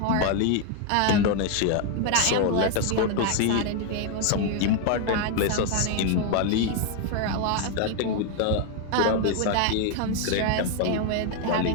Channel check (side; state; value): both; different; correlation 0.00